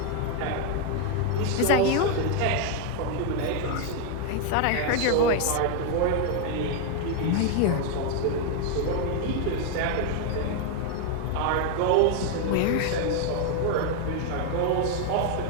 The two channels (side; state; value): both; different; correlation 0.01